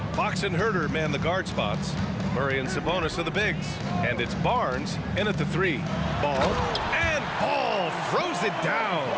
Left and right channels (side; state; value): both; identical; correlation 1.00